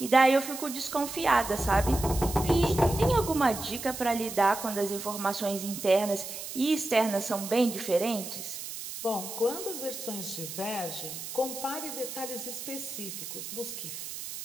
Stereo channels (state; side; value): noise; right; hiss, 9 dB below the sound